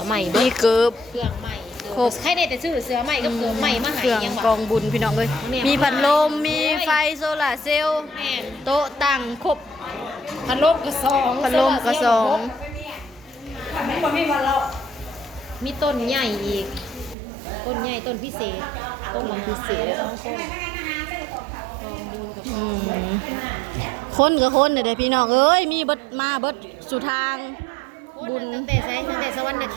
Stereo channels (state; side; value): drops out; left; at 17.2 s